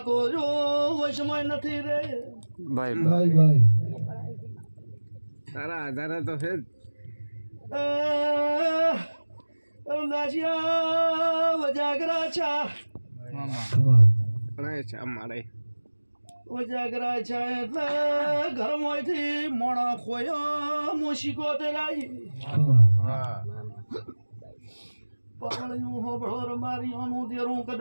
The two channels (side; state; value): both; inverted; correlation -1.00